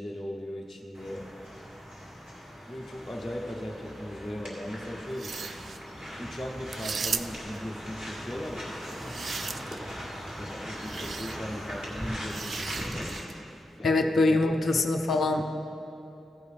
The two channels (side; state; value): both; normal; correlation 0.86